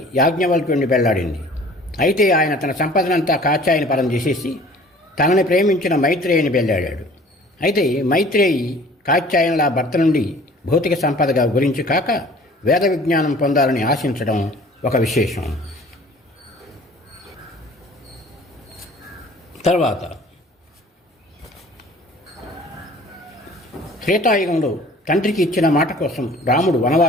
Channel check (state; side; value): normal; both; correlation 0.49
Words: యాజ్ఞవల్క్యుడిని పెళ్ళాడింది. అయితే ఆయన తన సంపదనంతా కాత్యాయని పరం చేసేసి తనని ప్రేమించిన మైత్రేయిని పెళ్ళాడాడు. అయితే మైత్రేయి కాత్యాయనుల భర్త నుండి భౌతిక సంపదగా గురించి కాక వేద విజ్ఞానం పొందాలని ఆశించడం ఒక విశేషం. తర్వాత త్రేతాయుగంలో తండ్రికి ఇచ్చిన మాట కోసం రాముడు